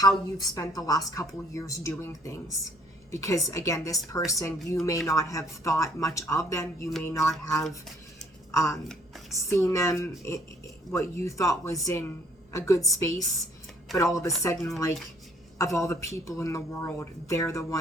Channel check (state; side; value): normal; both; correlation 0.62